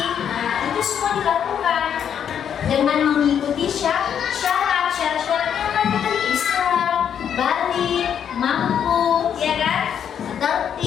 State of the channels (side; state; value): right; quieter; 8.6 dB